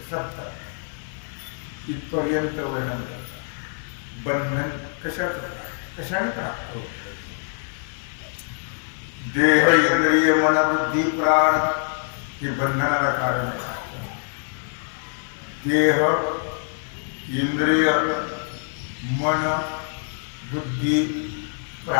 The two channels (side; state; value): right; silent; digital silence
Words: 70 इथपर्यंत वर्णन करतात. बंधन कशाने प्राप्त होत. देह, इंद्रिय, मन, बुद्धी, प्राण हे बंधनाला कारण आहे. देह, इंद्रिय, मन, बुद्धी,